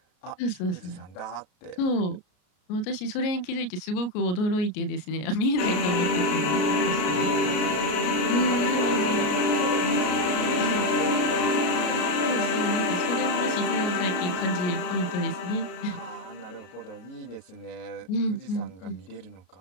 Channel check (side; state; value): right; late; 33 ms